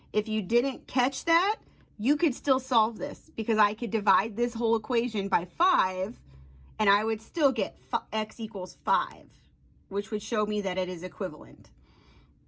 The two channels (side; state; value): both; identical; correlation 1.00